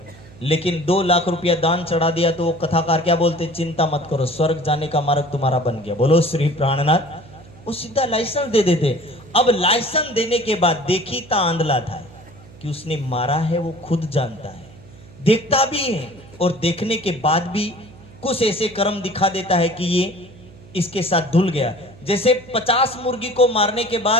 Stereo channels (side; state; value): right; noise; hum, 22 dB below the sound